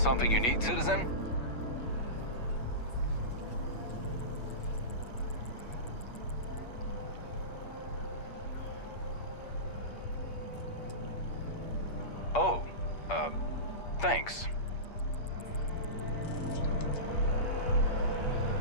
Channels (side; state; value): right; late; 8.4 ms